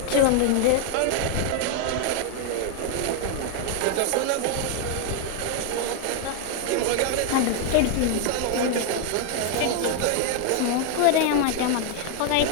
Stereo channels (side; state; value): both; different; correlation 0.00